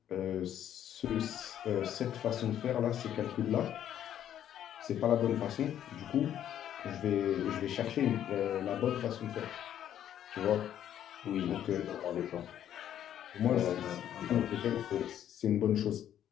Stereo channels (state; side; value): quieter; right; 10.6 dB